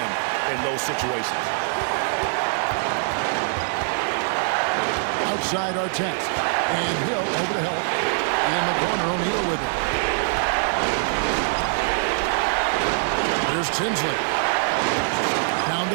in those situations. Outside Artest. And Hill over to help. In the corner, O'Neal with it. Here's Tinsley. Down to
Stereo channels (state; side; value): silent; left; digital silence